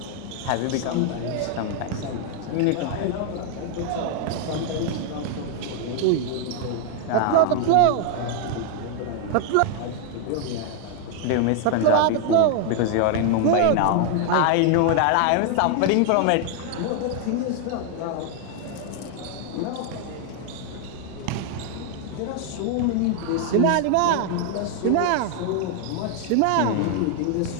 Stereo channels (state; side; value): different; both; correlation 0.00